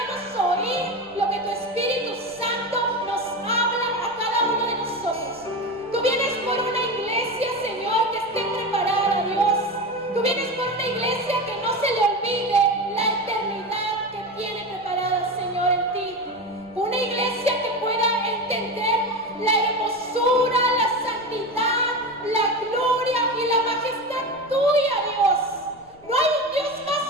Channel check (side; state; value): right; noise; rumble, 28 dB below the sound